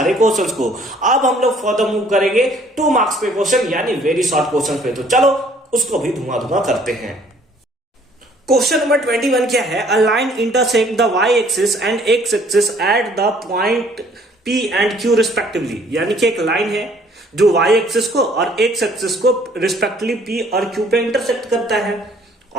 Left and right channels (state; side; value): normal; both; correlation 0.59